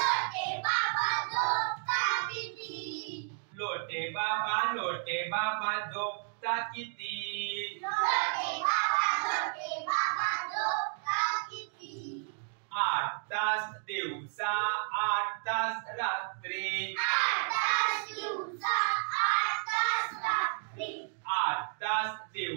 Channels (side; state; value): left; silent; 56 dB below the other